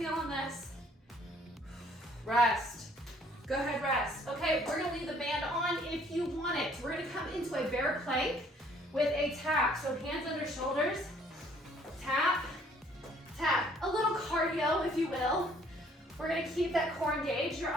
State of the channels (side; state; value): both; normal; correlation 0.61